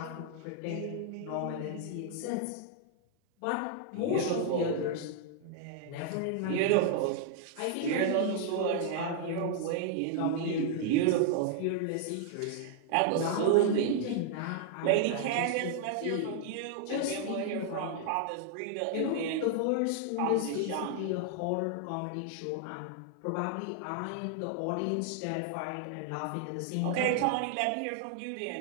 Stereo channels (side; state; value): both; different; correlation 0.00